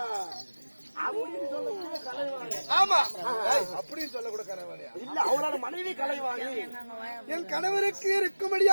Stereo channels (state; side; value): inverted; both; correlation -1.00